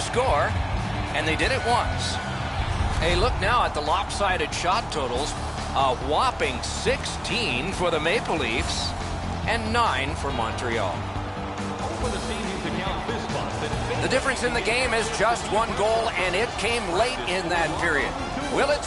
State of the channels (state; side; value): identical; both; correlation 1.00